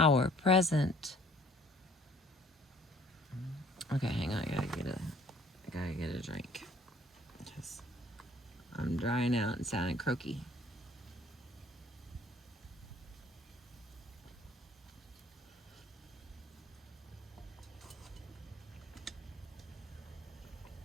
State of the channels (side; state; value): both; normal; correlation 0.57